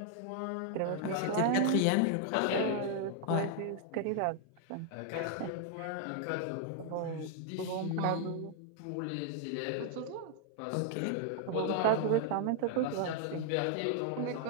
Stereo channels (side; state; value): both; different; correlation 0.00